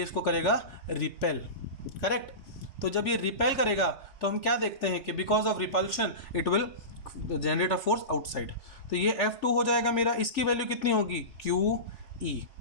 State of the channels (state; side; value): late; right; 3.4 ms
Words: इसको करेगा रिपेल। करेक्ट। तो जब ये रिपेल करेगा तो हम क्या देखते हैं कि because of repulsion it will generate a force outside. तो ये F2 हो जाएगा मेरा, इसकी वैल्यू कितनी होगी क्यू ई,